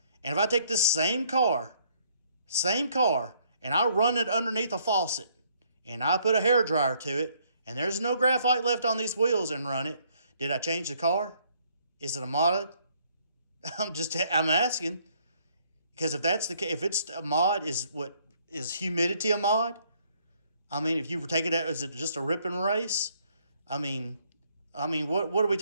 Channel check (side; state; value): both; inverted; correlation -0.66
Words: And if I take this same car, and I run it underneath a faucet, and I put a hairdryer to it, and there's no graphite left on these wheels and run it, did I change the car? Is it a mod? I'm asking. Because if that's the case, if it's a mod, is humidity a mod? I mean, if you were taking it, is it just a rip and race? I mean, what are we